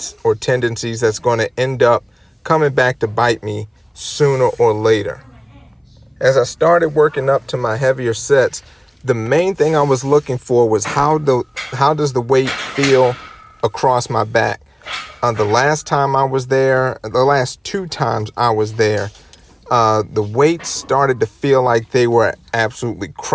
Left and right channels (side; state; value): both; identical; correlation 1.00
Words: or tendencies that's going to end up coming back to bite me sooner or later. As I started working up to my heavier sets, the main thing I was looking for was how does the weight feel across my back. The last time I was there, the last 2 times I was there, the weights started to feel like they were absolutely